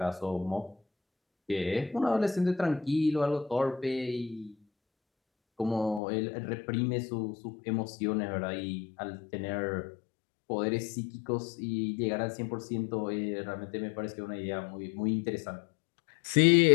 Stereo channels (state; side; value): drops out; right; at 6.0 s